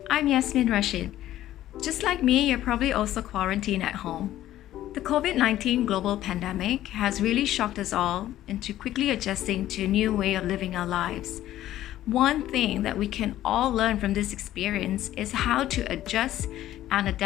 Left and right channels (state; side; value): quieter; right; 13.5 dB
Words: I'm Yasmin Rashid. Just like me, you're probably also quarantined at home. The COVID 19 global pandemic has really shocked us all into quickly adjusting to a new way of living our lives. One thing that we can all learn from this experience is how to adjust and